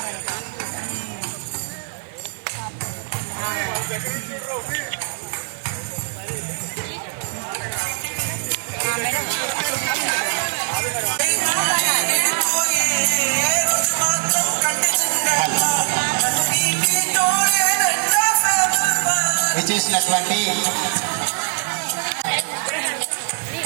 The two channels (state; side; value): silent; left; digital silence